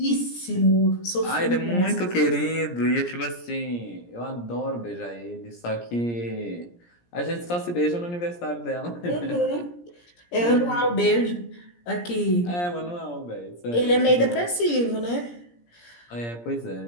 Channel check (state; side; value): late; right; 17 ms